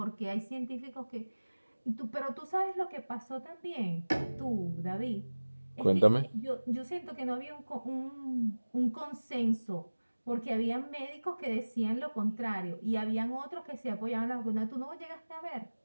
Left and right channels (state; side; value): inverted; both; correlation -1.00